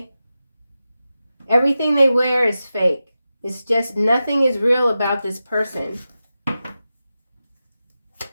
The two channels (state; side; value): inverted; both; correlation -0.92